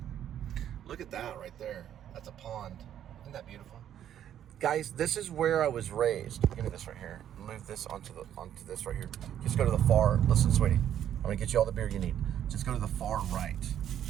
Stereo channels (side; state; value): left; quieter; 10.4 dB